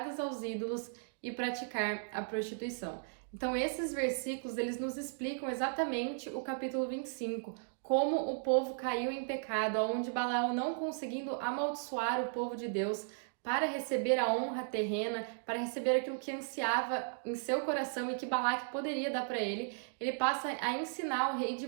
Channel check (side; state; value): left; silent; digital silence